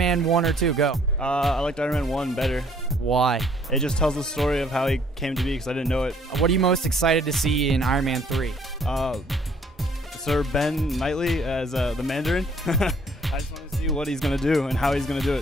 1 or 2, go. I liked Iron Man 1 better. Why? It just tells the story of how he came to be because I didn't know it. What are you most excited to see in Iron Man 3? Sir Ben Knightley as the Mandarin. I just want to see what he's going to do and how he's going to do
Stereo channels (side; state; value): both; normal; correlation 0.62